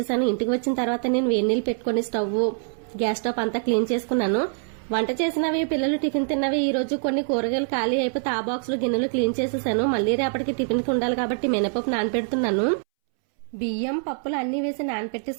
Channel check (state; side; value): silent; left; 62 dB below the other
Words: ఇంటికి వచ్చిన తర్వాత నేను వేడి నీళ్ళు పెట్టుకుని స్టవ్ గ్యాస్ స్టవ్ అంతా క్లీన్ చేసుకున్నాను. వంట చేసినవి పిల్లలు టిఫిన్ తిన్నవి. ఈ రోజు కొన్ని కూరగాయలు ఖాళీ అయిపోతే ఆ బాక్స్ లో గిన్నెలు క్లీన్ చేసేసాను. మళ్ళీ రేపటికి టిఫిన్ కి ఉండాలి కాబట్టి మినపప్పు నానపెడుతున్నాను. బియ్యం పప్పులు అన్ని వేసి